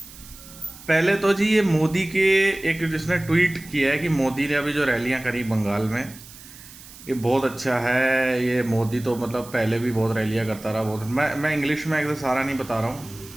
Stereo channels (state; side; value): noise; right; hiss, 18 dB below the sound